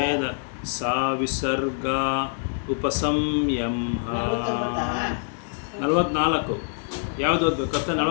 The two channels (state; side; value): silent; right; digital silence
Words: ಸಾ ವಿಸರ್ಗ ಉಪಸಂಯಂಹ 44 ಯಾವುದು ಓದಬೇಕು ಕಷ್ಟ